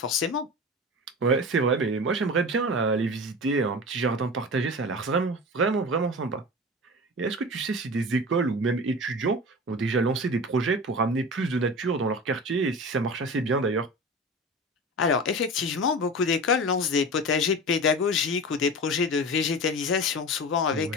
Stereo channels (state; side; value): normal; both; correlation 0.31